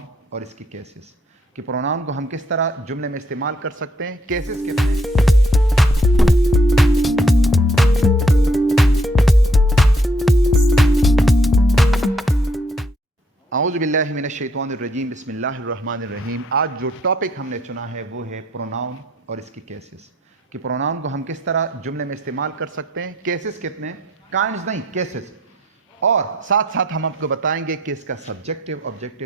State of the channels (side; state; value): both; normal; correlation 0.69